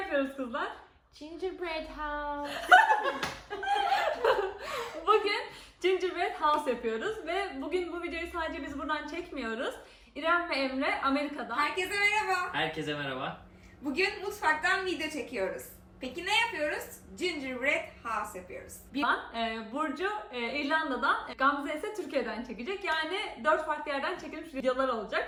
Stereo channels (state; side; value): identical; both; correlation 1.00